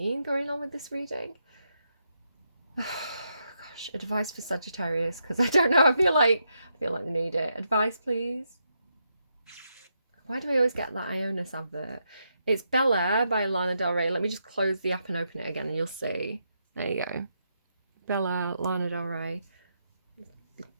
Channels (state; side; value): inverted; both; correlation -0.81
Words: going on with this reading. Gosh, advice for Sagittarius, because I don't know. I feel like they need it. Advice, please. Why do I always get that Ionis advert? It's Bel Air by Lana Del Rey. Let me just close the app and open it again, and you'll see. There you go. Bel Air, Lana Del Rey.